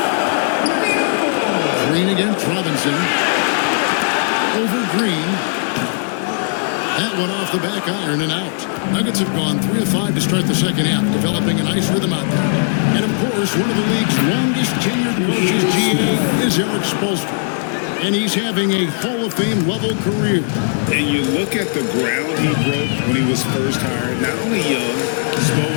Green against Robinson. Over Green. That one off the back iron and out. Nuggets have gone 3 of 5 to start the second half, developing a nice rhythm out there. And of course, one of the league's longest tenured coaches, GA, is Eric Spoelstra. And he's having a Hall of Fame level career. And you look at the ground he broke when he was first hired. Not only young, Spo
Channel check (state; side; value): silent; right; 57 dB below the other